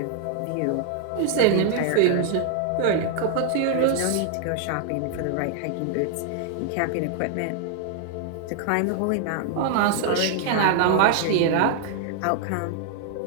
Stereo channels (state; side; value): different; both; correlation 0.00